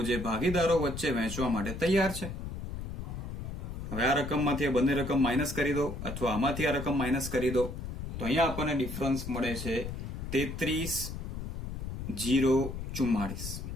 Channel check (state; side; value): noise; left; rumble, 6 dB below the sound